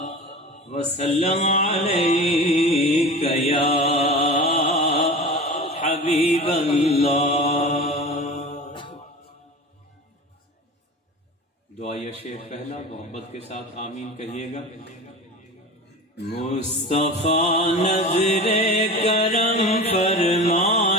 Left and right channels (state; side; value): normal; both; correlation 0.33